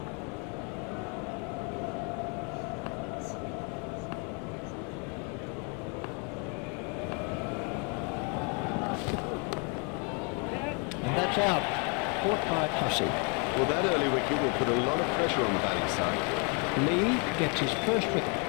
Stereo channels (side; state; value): right; quieter; 35.4 dB